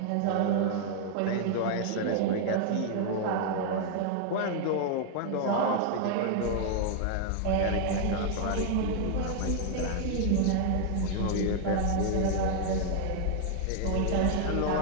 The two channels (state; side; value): different; both; correlation 0.00